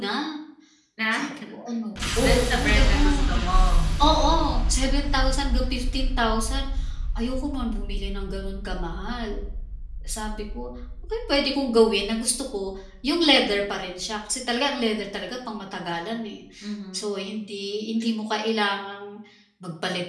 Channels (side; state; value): both; identical; correlation 1.00